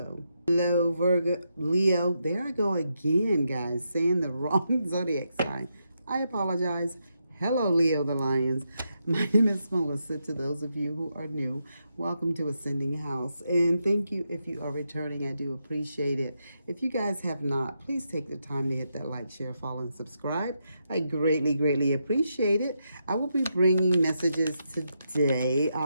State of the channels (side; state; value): both; inverted; correlation -0.83